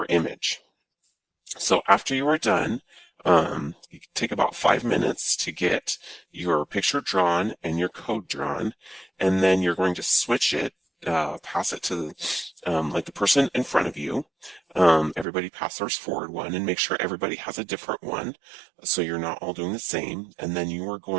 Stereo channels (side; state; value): left; drops out; at 15.2 s